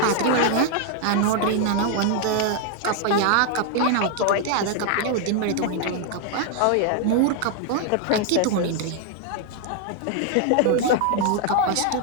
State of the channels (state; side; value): different; both; correlation 0.00